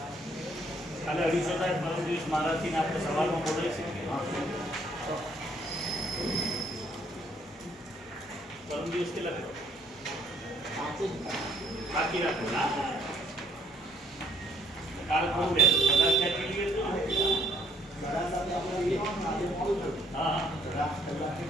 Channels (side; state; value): both; normal; correlation 0.65